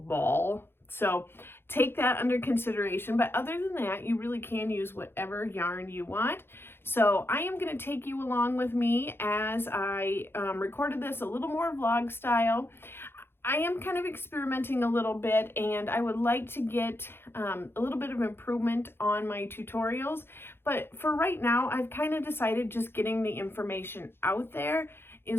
So take that under consideration. But other than that, you really can use whatever yarn you want. So I am going to take you along with me as I recorded this a little more vlog style. I am kind of experimenting a little bit, and I would like to get a little bit of improvement on my tutorials. But for right now, I've kind of decided just getting the information out there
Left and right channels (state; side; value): late; right; 0.11 ms